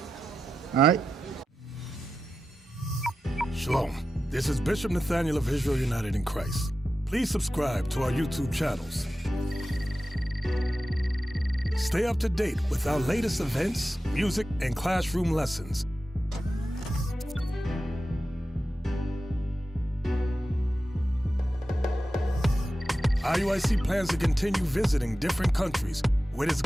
All right? Shalom. This is Bishop Nathaniel of Israel United in Christ. Please subscribe to our YouTube channels. Stay up to date with our latest events, music, and classroom lessons. IUIC plans to continue visiting different countries where this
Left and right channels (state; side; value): normal; both; correlation 0.92